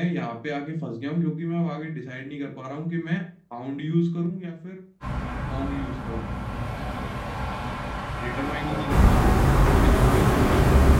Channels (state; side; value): identical; both; correlation 1.00